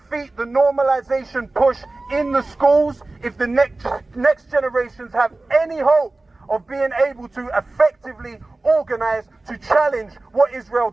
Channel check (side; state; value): left; quieter; 3.1 dB